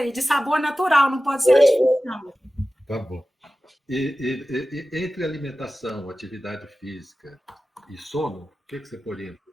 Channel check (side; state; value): both; normal; correlation 0.95